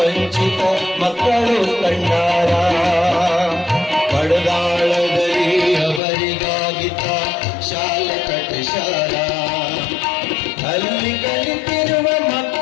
ಮಕ್ಕಳು ಕಂಡಾರ, ಬಡದಾಳದಲ್ಲಿ ಅವರಿಗಾಗಿತ ಶಾಲೆ ಕಟ್ಟಿಸಾರ. ಅಲ್ಲಿ ಕಲಿತಿರುವ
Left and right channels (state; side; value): drops out; right; at 6.0 s